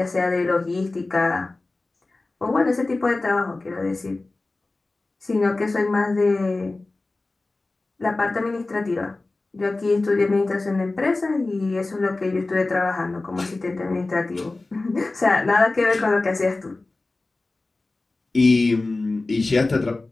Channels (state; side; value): quieter; right; 3.2 dB